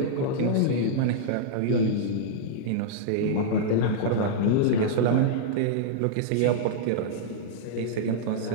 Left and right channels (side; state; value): both; different; correlation -0.02